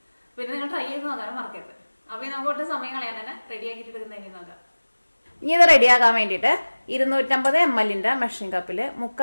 പിന്നെ നിങ്ങൾ ട്രൈ ചെയ്ത് നോക്കാനും മറക്കരുത്. അപ്പോൾ നമുക്ക് ഒട്ടും സമയം കളയാൻ തന്നെ റെഡി ആക്കിയിട്ട് എടുക്കുന്നതിന് നോക്കാം. ഇനി ഇത് റെഡിയാക്കാൻ വേണ്ടിയിട്ട് 250 ml മെഷറിംഗ് കപ്പിൽ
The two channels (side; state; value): both; inverted; correlation -1.00